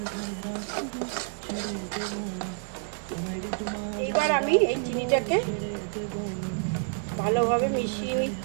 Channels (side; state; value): left; silent; digital silence